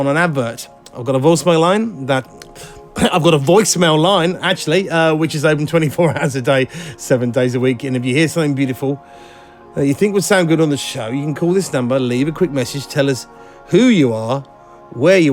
an advert. I've got a voicemail line actually, which is open 24 hours a day, 7 days a week. And if you hear something beautiful that you think would sound good on the show, you can call this number, leave a quick message, tell us who you are, where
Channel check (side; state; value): both; identical; correlation 1.00